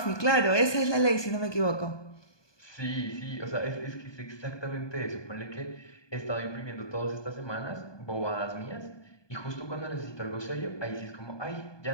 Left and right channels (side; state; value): right; late; 1.2 ms